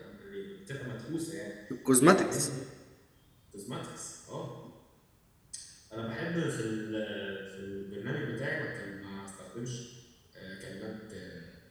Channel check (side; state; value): both; identical; correlation 1.00